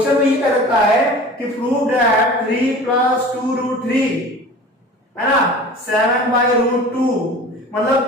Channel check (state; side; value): normal; both; correlation 0.40